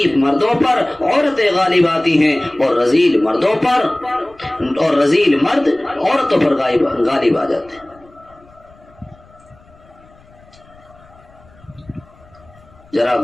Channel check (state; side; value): noise; left; rumble, 27 dB below the sound